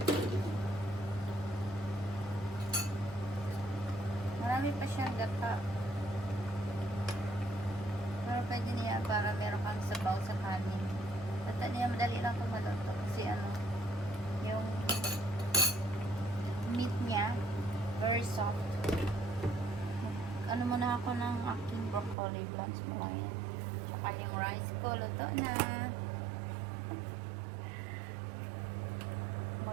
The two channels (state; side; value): drops out; left; at 22.2 s